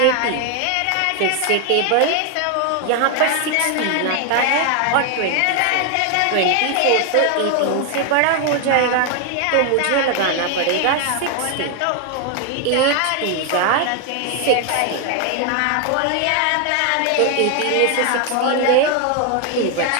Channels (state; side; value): different; both; correlation 0.00